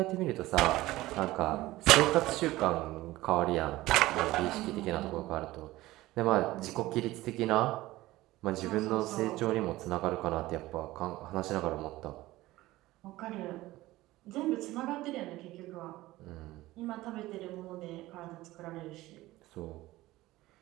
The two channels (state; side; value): quieter; left; 17.6 dB